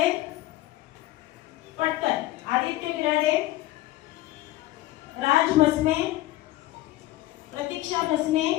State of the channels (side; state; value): right; quieter; 16.5 dB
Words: पटकन. आदित्य बिराडे, राज मसने, प्रतीक्षा भस्मे,